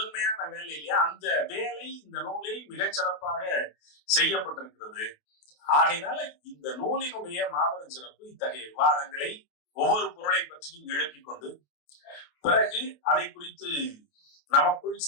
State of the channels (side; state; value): right; late; 28 ms